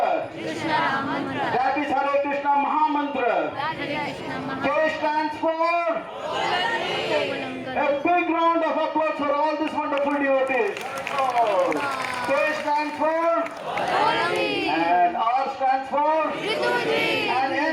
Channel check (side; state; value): both; identical; correlation 1.00